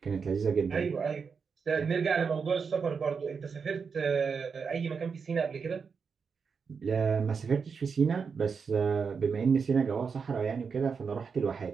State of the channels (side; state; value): left; quieter; 5.7 dB